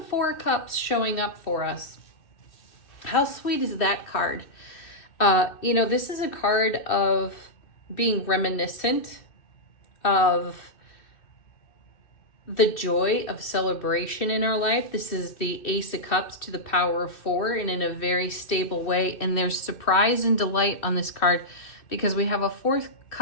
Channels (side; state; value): right; late; 2.6 ms